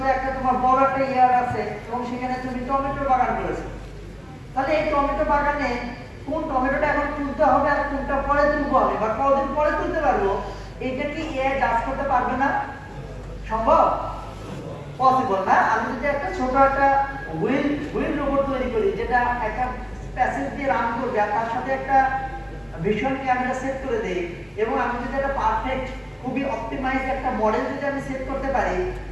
যে একটা তোমার বড় একটা ইয়ার আছে এবং সেখানে তুমি টমেটো বাগান করেছো তাহলে এই টমেটো বাগানে কোন টমেটোটা এখন তুলতে হবে আর কোনটা পরে তুলবো আমি বা কতদিন পরে তুলতে পারবো এটা কি এআই জাজ করতে পারবে না সম্ভব পসিবল না আমি যদি একটা ছোট একটা হুইল রোবট তৈরি করি যেটা একটা প্যাসেজ দিয়ে রান করবে আর তার সাথে একটা ভিশন ক্যামেরা সেট করে দেই এবং আমি যদি একটা পারফেক্ট খুবই অপটিমাইজ একটা মডেল যদি আমি সেট করতে পারি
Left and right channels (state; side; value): identical; both; correlation 1.00